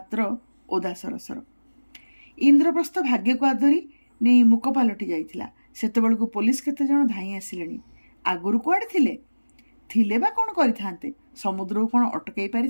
ଓଦା ସରସର। ଇନ୍ଦ୍ରପ୍ରସ୍ଥ ଭାଗ୍ୟକୁ ଆଦରି ନେଇ ମୁକ ପାଲଟି ଯାଇଥିଲା। ସେତେବେଳକୁ ପୋଲିସ କେତେ ଜଣ ଧାଇଁ ଆସିଲେଣି। ଆଗରୁ କୁଆଡ଼େ ଥିଲେ ବା କ'ଣ କରିଥାନ୍ତେ? ସମୁଦ୍ରକୁ କ'ଣ ଅଟକାଇ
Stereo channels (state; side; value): inverted; both; correlation -1.00